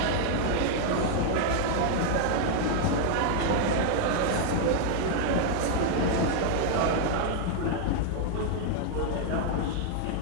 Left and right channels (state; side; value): different; both; correlation 0.00